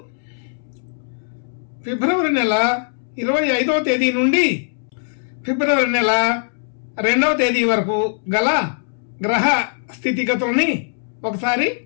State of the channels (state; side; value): silent; right; 65 dB below the other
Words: ఫిబ్రవరి నెల 25వ తేదీ నుండి ఫిబ్రవరి నెల 2వ తేదీ వరకు గల గ్రహ స్థితిగతుల్ని ఒకసారి